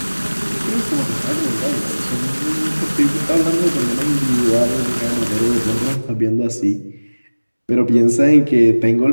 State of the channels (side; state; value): both; inverted; correlation -1.00